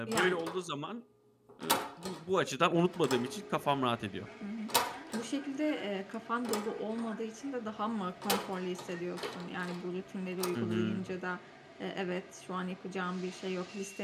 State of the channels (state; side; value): identical; both; correlation 1.00